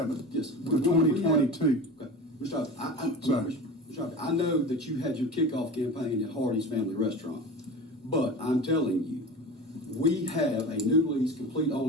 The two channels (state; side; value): normal; both; correlation 0.32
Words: Yes. Of 2022. Okay. Mr. Harvey, I know that you had your kickoff campaign at Hardy's Family Restaurant, but I'm telling you, we have a new lease, complete